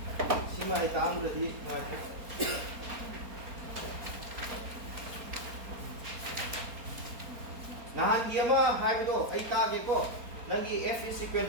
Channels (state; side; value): late; left; 4.3 ms